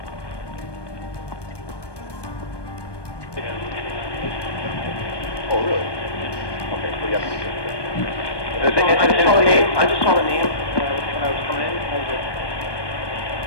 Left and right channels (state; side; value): late; right; 1.2 ms